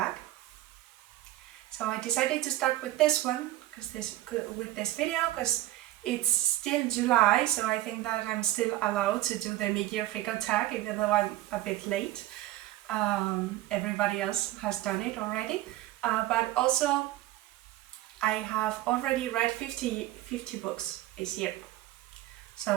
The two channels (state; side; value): quieter; left; 15.6 dB